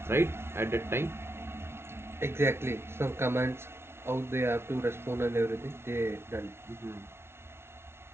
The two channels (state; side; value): late; left; 0.12 ms